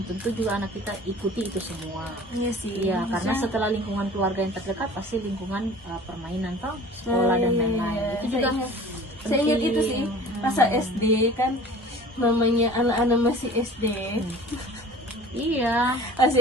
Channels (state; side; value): normal; both; correlation 0.44